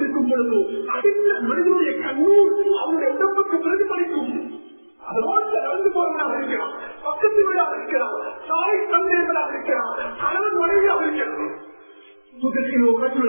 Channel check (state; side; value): inverted; both; correlation -1.00